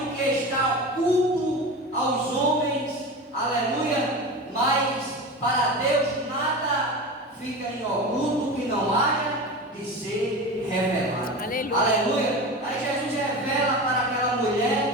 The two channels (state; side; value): normal; both; correlation 0.28